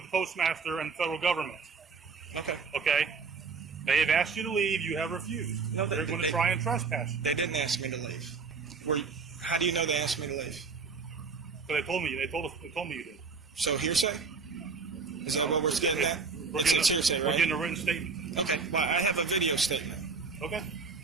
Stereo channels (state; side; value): quieter; left; 5.0 dB